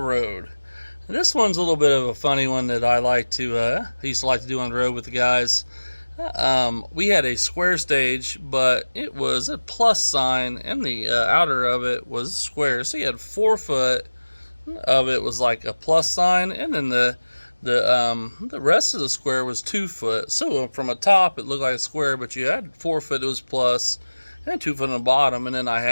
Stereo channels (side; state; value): both; inverted; correlation -1.00